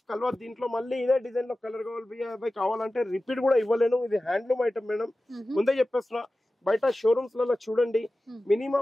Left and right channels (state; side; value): normal; both; correlation 0.95